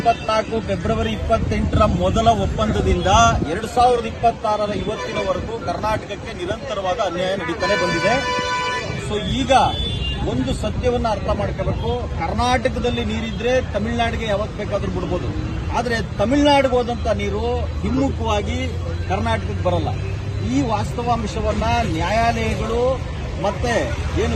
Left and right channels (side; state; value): both; identical; correlation 1.00